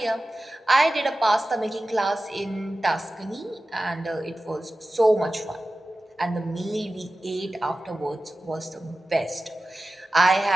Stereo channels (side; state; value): both; normal; correlation 0.95